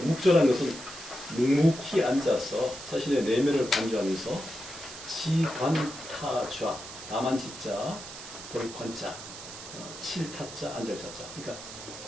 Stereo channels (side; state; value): right; noise; hiss, 12 dB below the sound